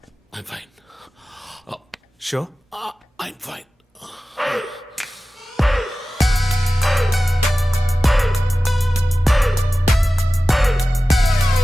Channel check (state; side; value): normal; both; correlation 0.95